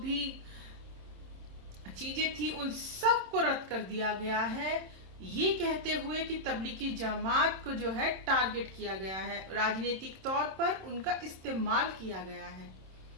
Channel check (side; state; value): left; late; 26 ms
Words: चीजें थी, उन सब को रद्द कर दिया गया है, ये कहते हुए कि तबलीगी जमात को जो है टारगेट किया गया है, राजनीतिक तौर पर उनका इस्तेमाल किया गया है।